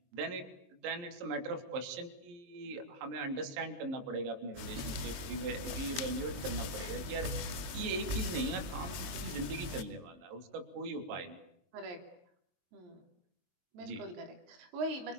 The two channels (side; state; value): left; late; 22 ms